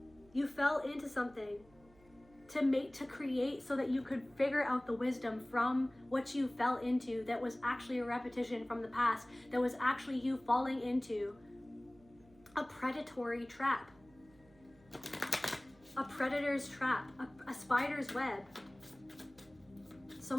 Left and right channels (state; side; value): noise; right; hum, 27 dB below the sound